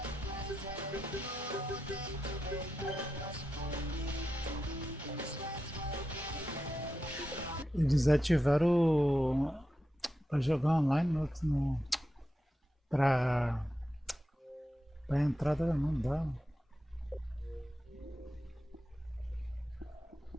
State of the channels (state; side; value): normal; both; correlation 0.89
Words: Eles ativaram para jogar online para entrada não dá.